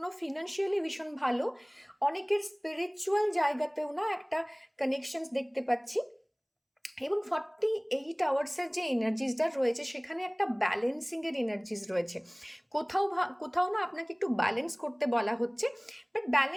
ফিনান্সিয়ালি ভীষণ ভালো। অনেকের স্পিরিচুয়াল জায়গাতেও না একটা কানেকশনস দেখতে পাচ্ছি। এবং 48 আওয়ার্সের যে এনার্জিসটা রয়েছে সেখানে একটা ব্যালেন্সিংয়ের এনার্জিস রয়েছে। কোথাও না আপনাকে একটু ব্যালেন্স করতে বলা হচ্ছে। বাট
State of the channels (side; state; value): both; identical; correlation 1.00